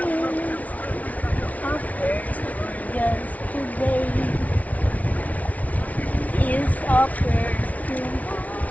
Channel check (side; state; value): right; late; 0.070 ms